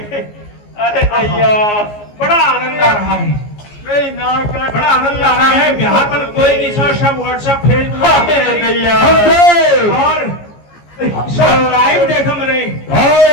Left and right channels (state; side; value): late; right; 14 ms